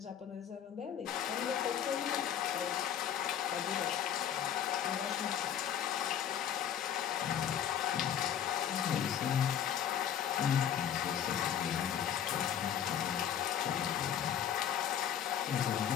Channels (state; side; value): quieter; right; 9.5 dB